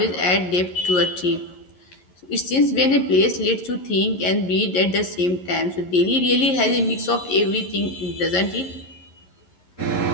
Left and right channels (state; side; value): late; right; 11 ms